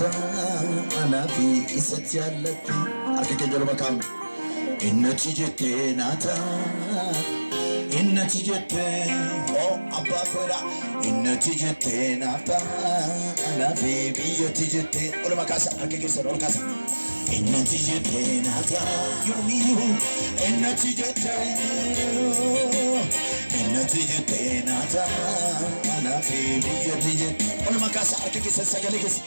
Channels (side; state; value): both; inverted; correlation -1.00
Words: Anafi izzati allati Arke kenyol makam Innati jette nata Innati jette Oh abba koira Innati jette nata Anafi biyyati jette Ola makasa arke kenyol makasa Innati jette nata yomiyu Innati jette nata Anafi biyyati jette Ola makasa arke kenyol sagalikis